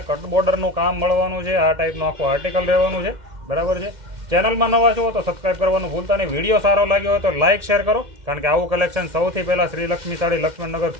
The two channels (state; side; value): late; left; 2.1 ms